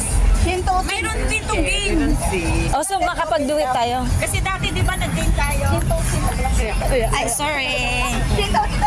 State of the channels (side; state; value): both; identical; correlation 1.00